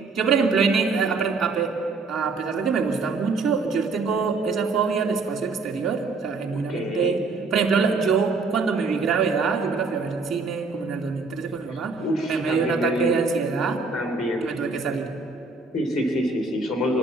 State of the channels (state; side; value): quieter; left; 4.0 dB